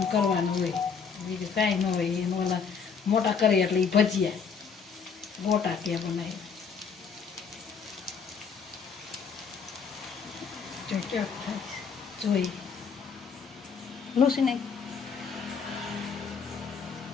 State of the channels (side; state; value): right; quieter; 6.1 dB